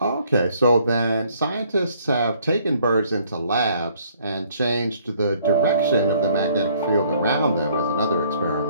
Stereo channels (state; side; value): inverted; both; correlation -0.63